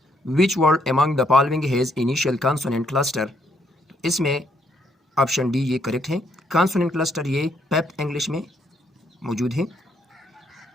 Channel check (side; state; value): both; normal; correlation 0.72